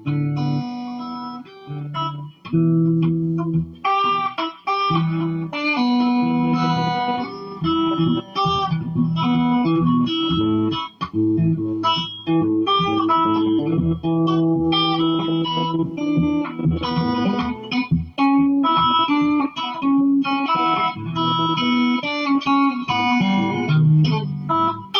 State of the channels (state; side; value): identical; both; correlation 1.00